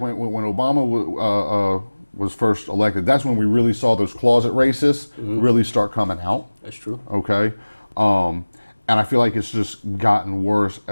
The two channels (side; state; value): both; inverted; correlation -1.00